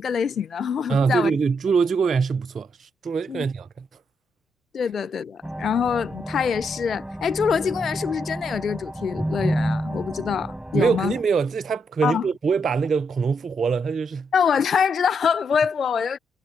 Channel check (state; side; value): normal; both; correlation 0.78